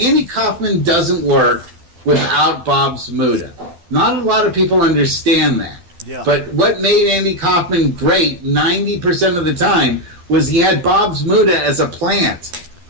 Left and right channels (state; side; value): late; left; 12 ms